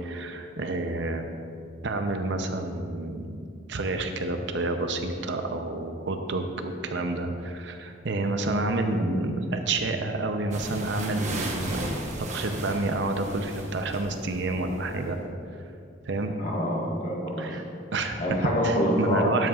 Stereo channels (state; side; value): normal; both; correlation 0.40